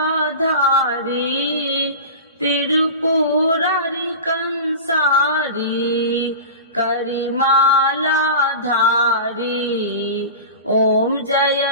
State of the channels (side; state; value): both; inverted; correlation -0.30